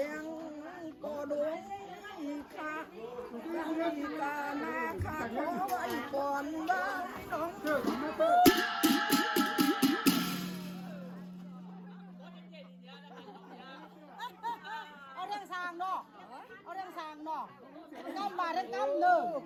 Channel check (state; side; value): identical; both; correlation 1.00